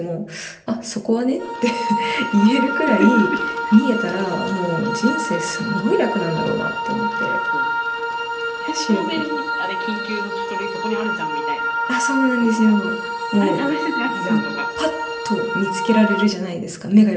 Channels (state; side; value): identical; both; correlation 1.00